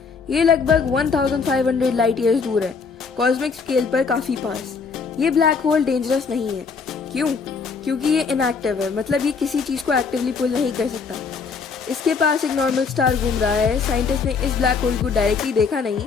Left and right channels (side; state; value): right; quieter; 5.2 dB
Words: ये लगभग 1500 लाइट ईयर्स दूर है, कॉस्मिक स्केल पर काफी पास। ये ब्लैक होल डेंजरस नहीं है। क्यों? क्योंकि ये इनएक्टिव है, मतलब ये किसी चीज को एक्टिवली पुल नहीं कर सकता। इसके पास एक नॉर्मल स्टार घूम रहा है। साइंटिस्ट ने इस ब्लैक होल को डायरेक्टली देखा